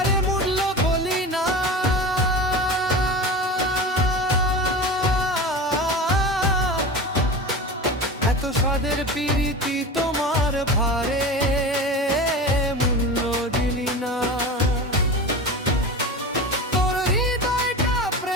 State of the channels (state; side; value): normal; both; correlation 0.30